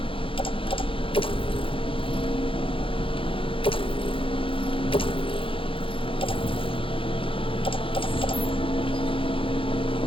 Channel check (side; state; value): right; late; 0.26 ms